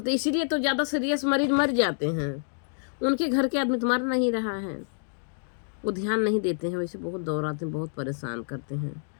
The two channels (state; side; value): silent; right; digital silence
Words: इसीलिए तो ज़्यादा सीरियस मरीज मर जाते हैं, उनके घर के आदमी तो मर नहीं रहा है, वो ध्यान नहीं देते हैं। वैसे बहुत दौड़ाते हैं, बहुत परेशान करते हैं।